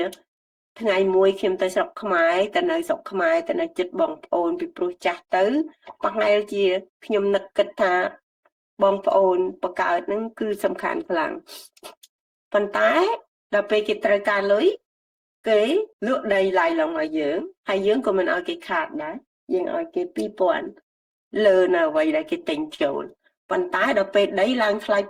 ថ្ងៃមួយខ្ញុំទៅស្រុកខ្មែរទៅនៅស្រុកខ្មែរទៅនៅចិត្តបងប្អូនពីព្រោះចាស់ទៅប្រហែលជាខ្ញុំនឹកគិតថាបងប្អូនបកើតហ្នឹងគឺសំខាន់ខ្លាំងប៉ុន្តែដល់ពេលគេត្រូវការលុយគេលក់ដីឡាយឡងឲ្យយើងហើយយើងក៏មិនឲ្យគេខាតដែរយើងឲ្យគេ 2000 លើនៅអ្វីដែលគេទិញចូលប៉ុន្តែដល់ពេលដីឡើងថ្លៃ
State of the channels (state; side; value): identical; both; correlation 1.00